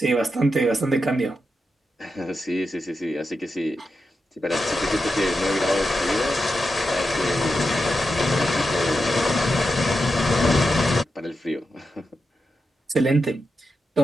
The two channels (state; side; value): normal; both; correlation 0.88